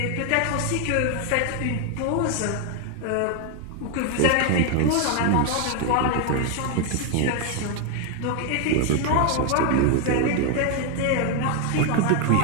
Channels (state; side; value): different; both; correlation 0.01